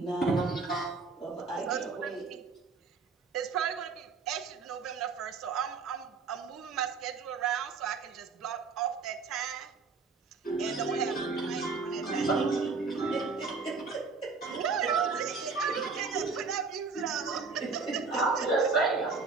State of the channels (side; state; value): left; quieter; 4.6 dB